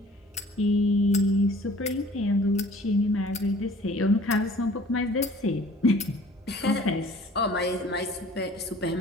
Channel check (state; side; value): normal; both; correlation 0.51